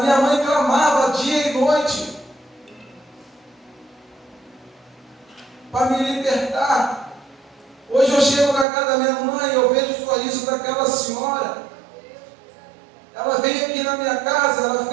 mãe clamava dia e noite para me libertar. Hoje eu chego na casa da minha mãe, eu vejo o sorriso daquela senhora. Ela vem aqui na minha casa, ela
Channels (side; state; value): left; drops out; at 8.7 s